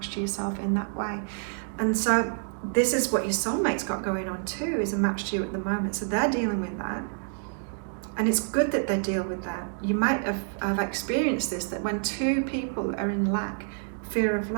to yourself in that way. And so this is what your soulmate's got going on too, is a match to you at the moment. So they're dealing with that. And it's good that they deal with that. You might have experienced this, that when two people are in lack, fear of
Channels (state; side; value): silent; left; digital silence